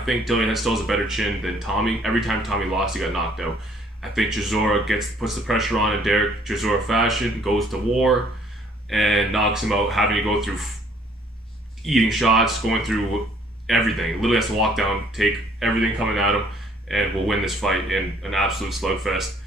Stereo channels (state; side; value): normal; both; correlation 0.61